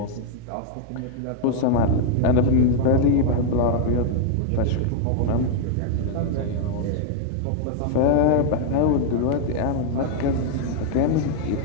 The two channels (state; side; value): different; both; correlation 0.00